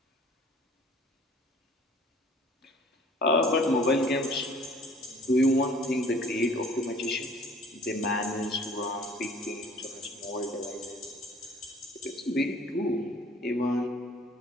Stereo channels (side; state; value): both; normal; correlation 0.52